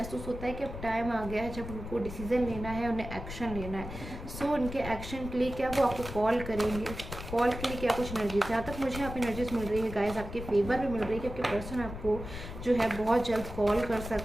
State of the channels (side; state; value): left; noise; rumble, 9 dB below the sound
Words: होता है कि अब टाइम आ गया है जब उनको डिसीजन लेना है, उन्हें एक्शन लेना है। सो उनके एक्शन के लिए क्या वो आपको कॉल करेंगे, कॉल के लिए क्या कुछ एनर्जीज, जहाँ तक मुझे यहाँ पे एनर्जीज मिल रही है गाइस, आपके फेवर में मिल रही है कि आपके पर्सन आपको जो है बहुत जल्द कॉल कर